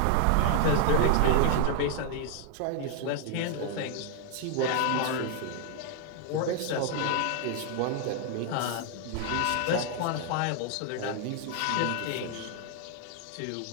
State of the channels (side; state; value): both; different; correlation 0.00